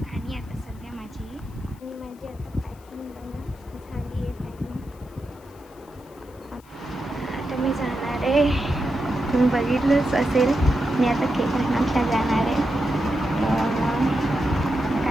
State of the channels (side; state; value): left; noise; hiss, 28 dB below the sound